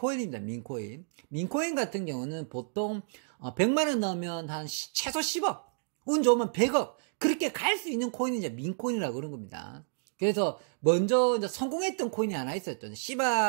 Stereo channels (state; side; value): silent; left; digital silence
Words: 민코인. 민코인 같은 경우는 보통 100만원 넣으면 한 최소 10억, 운 좋으면 100억 그렇게 갈 수 있는 코인이 이제 민코인이라고 그런 겁니다. 그래서 먼저 이제 성공했던 코인이 하나 있었죠.